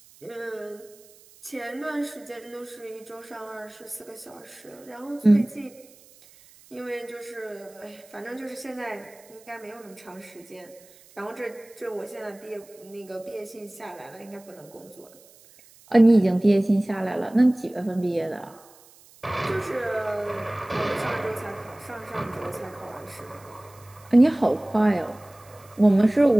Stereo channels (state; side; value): noise; right; hiss, 25 dB below the sound